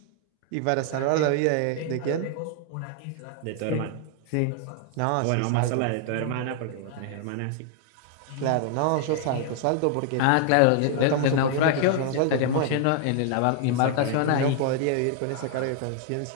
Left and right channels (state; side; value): different; both; correlation 0.00